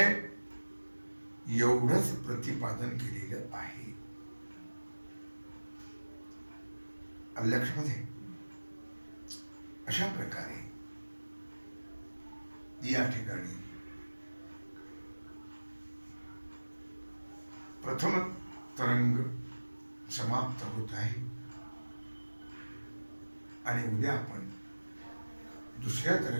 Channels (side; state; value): both; inverted; correlation -1.00